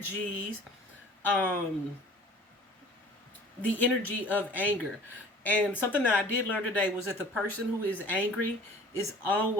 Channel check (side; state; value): both; normal; correlation 0.47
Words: the energy of anger. And something that I did learn today was that the person who is angry is